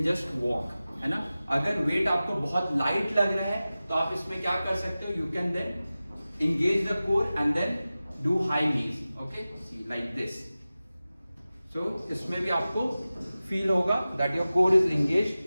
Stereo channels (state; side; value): inverted; both; correlation -0.96